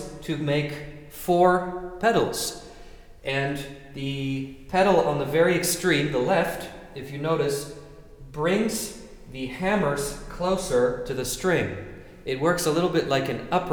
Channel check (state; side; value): identical; both; correlation 1.00